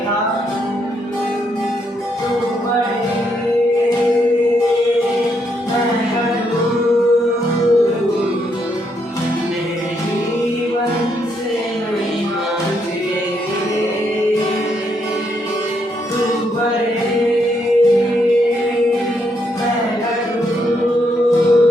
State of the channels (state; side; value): normal; both; correlation 0.76